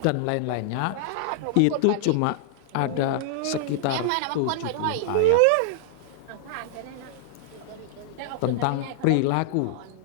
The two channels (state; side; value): different; both; correlation -0.01